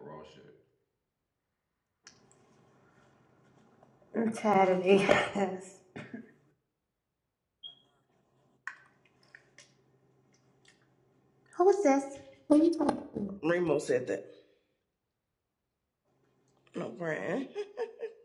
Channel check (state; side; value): identical; both; correlation 1.00